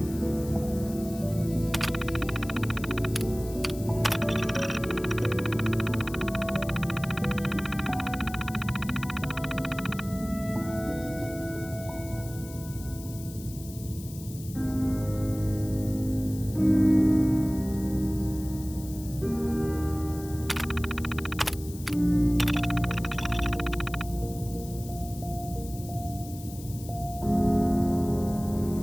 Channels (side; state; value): left; noise; hiss, 16 dB below the sound